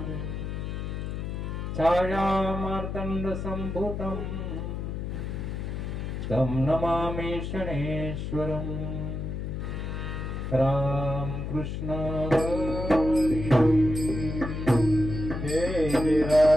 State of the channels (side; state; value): left; noise; hum, 4 dB below the sound